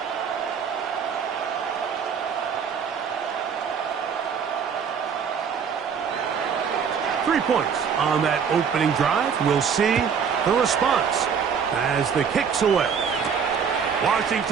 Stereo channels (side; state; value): left; quieter; 6.8 dB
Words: Three points on that opening drive. We'll see the response as the kick's away.